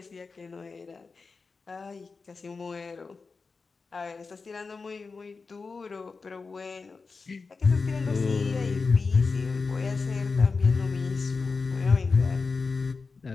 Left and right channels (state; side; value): quieter; right; 4.5 dB